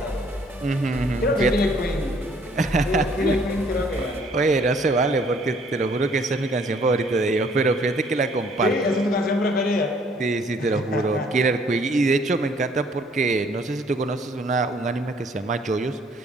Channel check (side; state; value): both; normal; correlation 0.61